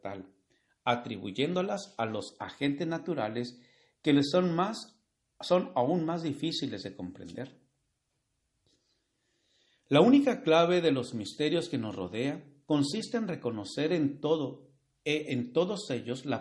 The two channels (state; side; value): identical; both; correlation 1.00